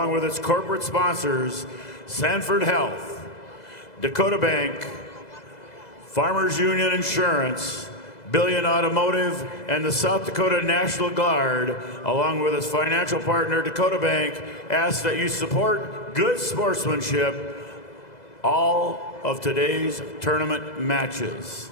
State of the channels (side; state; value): right; late; 2.0 ms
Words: with its corporate sponsors, Sanford Health, Dakota Bank, Farmers Union Insurance, Billion Automotive, and the South Dakota National Guard, along with its financial partner, Dakota Bank, ask that you support good sportsmanship all of today's tournament matches.